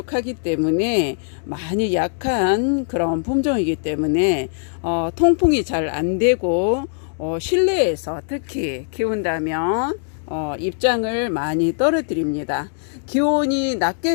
때문에 많이 약한 그런 품종이기 때문에 통풍이 잘 안 되고 실내에서 특히 키운다면 입장을 많이 떨어뜨립니다. 기온이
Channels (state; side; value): silent; right; digital silence